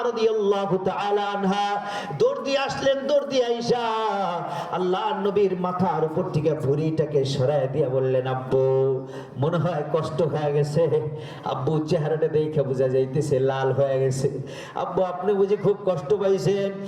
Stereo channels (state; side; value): identical; both; correlation 1.00